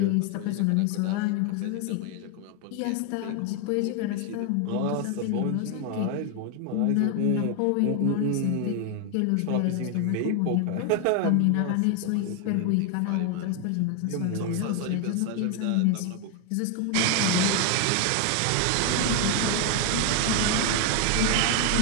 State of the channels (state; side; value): different; both; correlation 0.01